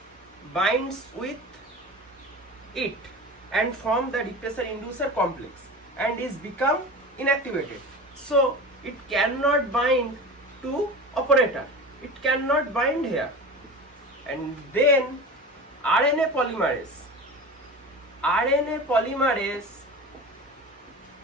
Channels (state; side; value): normal; both; correlation 0.32